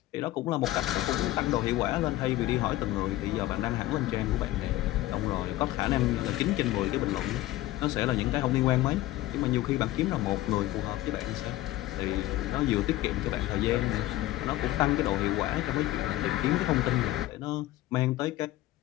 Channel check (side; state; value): right; quieter; 16.3 dB